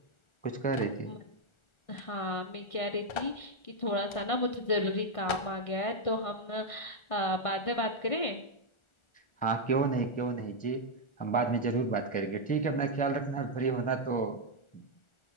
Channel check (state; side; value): late; right; 1.4 ms